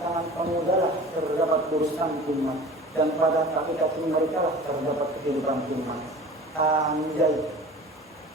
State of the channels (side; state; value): both; normal; correlation 0.40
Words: pemuda lah terdapat urusan umat, dan pada kaki-kaki mereka lah terdapat kehidupan umat. Anjay,